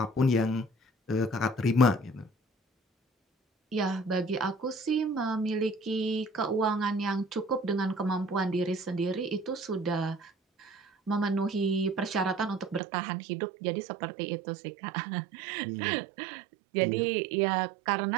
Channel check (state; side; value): drops out; left; at 12.8 s